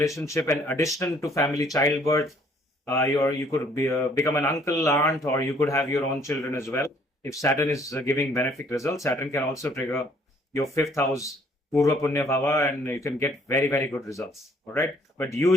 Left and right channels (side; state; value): both; normal; correlation 0.61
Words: and addition to family, childbirth. You could become an uncle, aunt, or you could have your own children as well. If Saturn is giving benefic results, Saturn can also trigger your 5th house, Purva Punya Bhava, and you can get very, very good results. All right. But